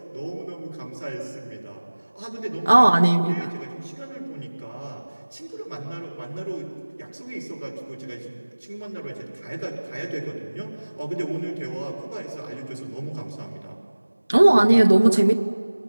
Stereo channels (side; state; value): both; inverted; correlation -1.00